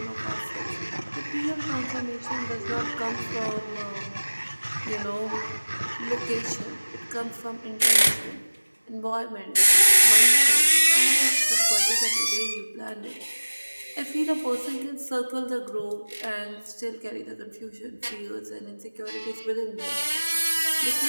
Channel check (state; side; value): inverted; both; correlation -1.00